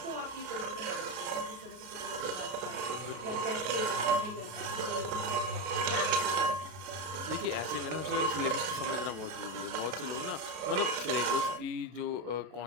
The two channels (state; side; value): late; left; 33 ms